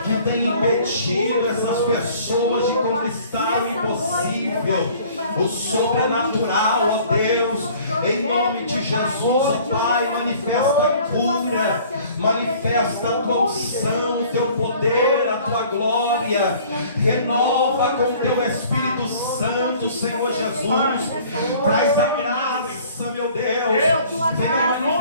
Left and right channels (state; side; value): inverted; both; correlation -0.52